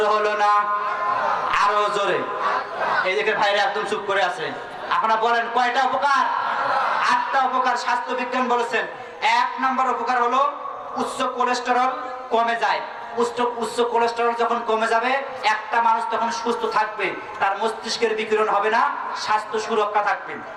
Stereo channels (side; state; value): both; identical; correlation 1.00